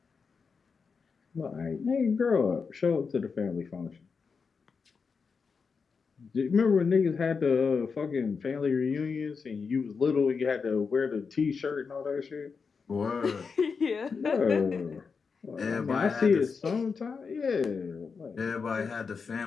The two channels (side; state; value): right; quieter; 5.3 dB